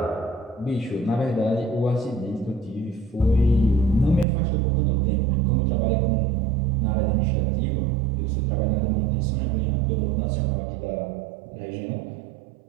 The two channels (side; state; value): left; drops out; at 4.2 s